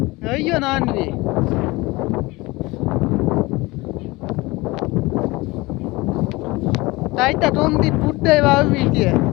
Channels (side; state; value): right; quieter; 22.2 dB